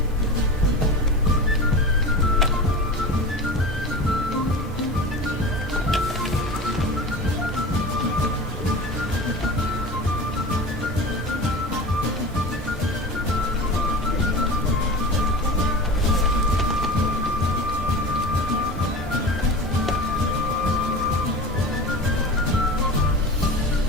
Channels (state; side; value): normal; both; correlation 0.31